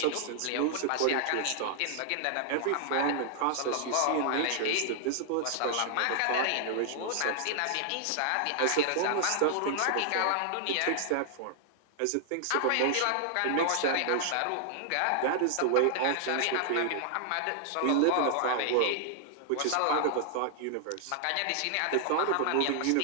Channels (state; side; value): different; both; correlation -0.01